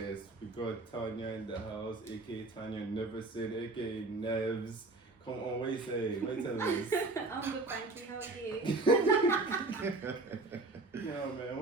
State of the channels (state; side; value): quieter; left; 3.3 dB